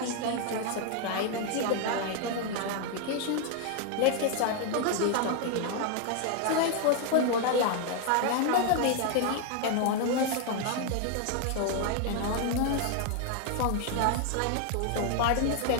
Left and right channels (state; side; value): different; both; correlation 0.00